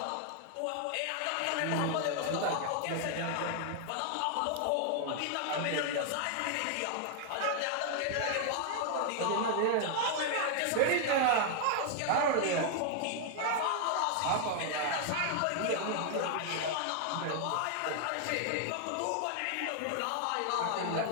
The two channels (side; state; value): both; different; correlation 0.00